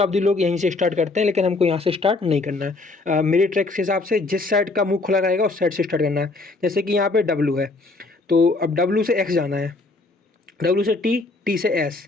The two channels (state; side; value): quieter; right; 3.4 dB